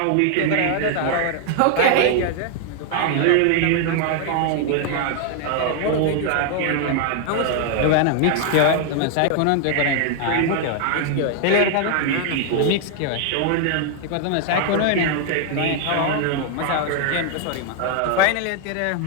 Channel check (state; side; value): different; both; correlation 0.00